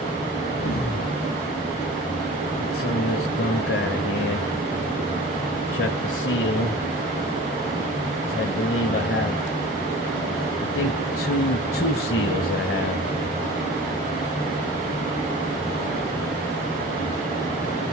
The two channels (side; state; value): both; normal; correlation 0.41